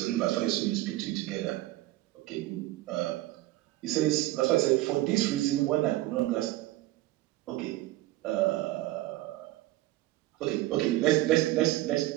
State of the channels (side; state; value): left; quieter; 17.1 dB